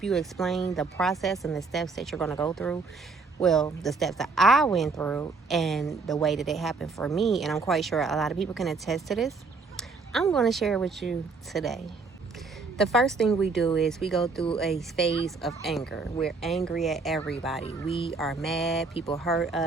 you explain the process and the steps that you're going to go through, well, the steps that I went through and the way that it happened for me, and I'm quite sure a lot of people can attest to this, I'm going to share with you today. The first thing we do is we go through a phase of anger. We're angry at everybody. We are mad. People hurt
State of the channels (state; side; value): quieter; left; 4.3 dB